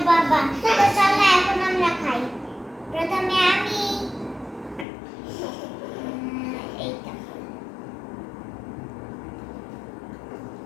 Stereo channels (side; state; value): right; drops out; at 4.9 s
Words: বাবা। তো চলো এখন আমরা খাই। প্রথমে আমি এইটা